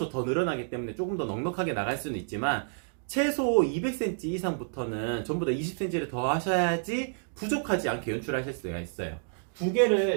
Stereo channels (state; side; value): silent; left; digital silence